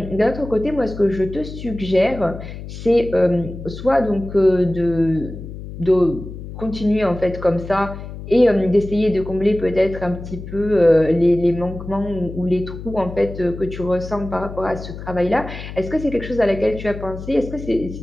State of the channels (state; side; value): noise; left; hum, 11 dB below the sound